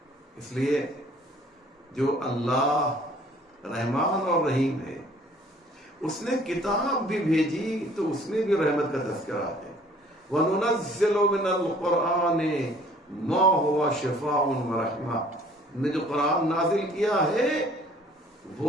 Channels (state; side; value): normal; both; correlation 0.55